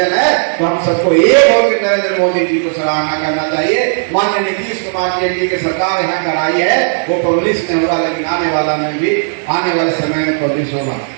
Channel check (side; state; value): left; silent; digital silence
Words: है, तो हम सबको एक होकर नरेंद्र मोदी जी को सराहना करना चाहिए। माननीय नीतीश कुमार जी एनडीए की सरकार यहाँ कराई है, वो पब्लिश नहीं होगा, लेकिन आने वाले समय में पब्लिश होगा।